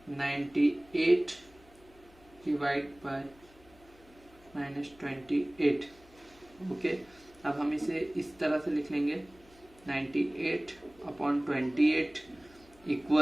98 divided by -28. Okay, अब हम इसे इस तरह से लिख लेंगे 98/28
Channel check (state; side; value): noise; left; hum, 26 dB below the sound